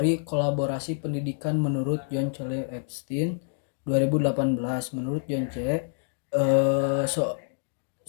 kolaborasi pendidikan menurut John C. Epstein 2018. Menurut John C.,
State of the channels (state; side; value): silent; right; digital silence